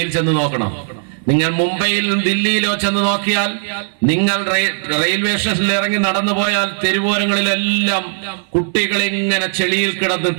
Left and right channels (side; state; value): left; silent; digital silence